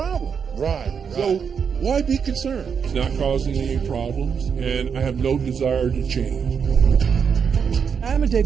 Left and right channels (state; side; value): quieter; left; 6.7 dB